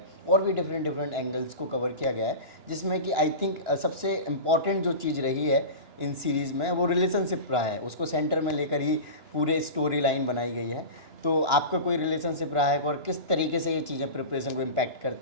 और भी डिफरेंट डिफरेंट एंगल्स को कवर किया गया है, जिसमें कि आई थिंक सबसे इम्पॉर्टेंट जो चीज़ रही है इन सीरीज़ में वो रिलेशनशिप रहा है, उसको सेंटर में लेकर ही पूरे स्टोरी लाइन बनाई गई है। तो आपका कोई रिलेशनशिप रहा है और किस तरीके से ये चीज़ें प्रिपरेशन को इम्पैक्ट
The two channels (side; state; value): left; late; 2.9 ms